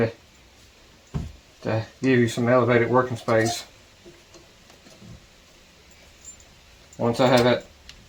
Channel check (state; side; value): identical; both; correlation 1.00